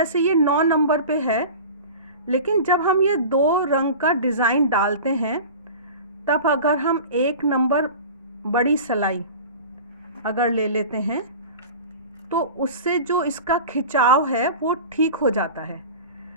ये 9 नंबर पे है, लेकिन जब हम ये 2 रंग का डिज़ाइन डालते हैं तब अगर हम 1 नंबर बड़ी सलाई अगर ले लेते हैं तो उससे जो इसका खिंचाव है वो ठीक हो जाता है।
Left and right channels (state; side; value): inverted; both; correlation -0.36